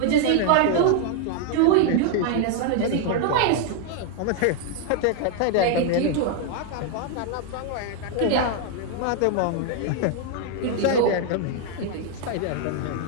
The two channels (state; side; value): different; both; correlation 0.00